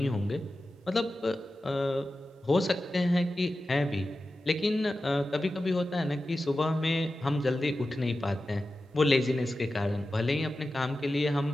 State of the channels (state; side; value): normal; both; correlation 0.93